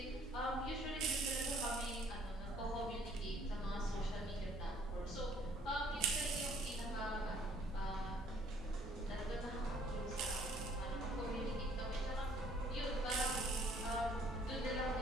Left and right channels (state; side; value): normal; both; correlation 0.60